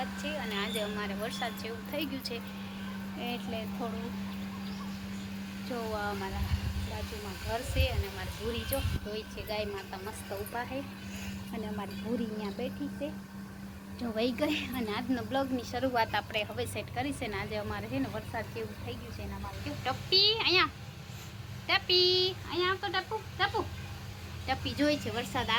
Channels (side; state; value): both; identical; correlation 1.00